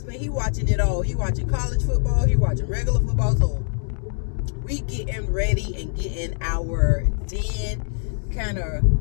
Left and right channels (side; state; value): right; silent; 63 dB below the other